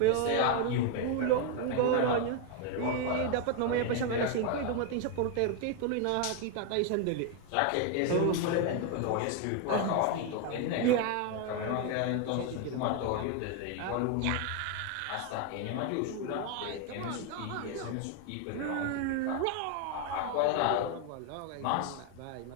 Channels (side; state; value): both; different; correlation 0.01